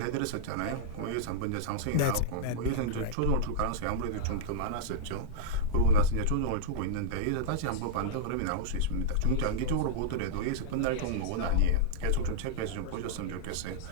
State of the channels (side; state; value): both; different; correlation -0.02